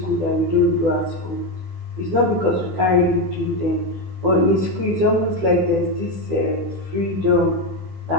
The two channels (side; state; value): left; late; 16 ms